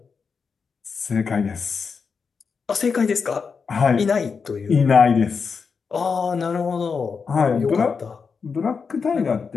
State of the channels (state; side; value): quieter; right; 5.5 dB